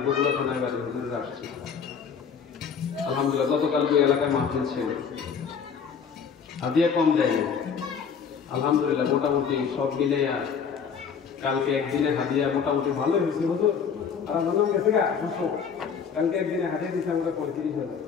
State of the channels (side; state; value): right; quieter; 6.6 dB